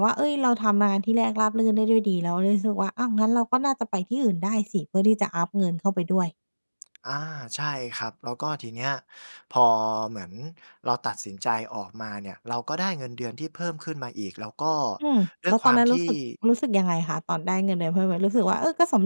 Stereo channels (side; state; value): both; inverted; correlation -1.00